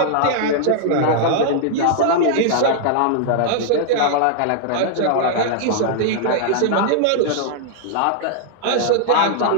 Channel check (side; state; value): both; different; correlation -0.01